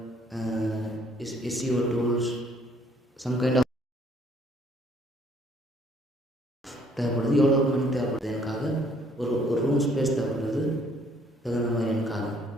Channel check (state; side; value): normal; both; correlation 0.63